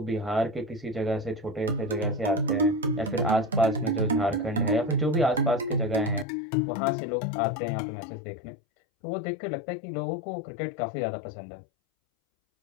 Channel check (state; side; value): drops out; right; at 6.2 s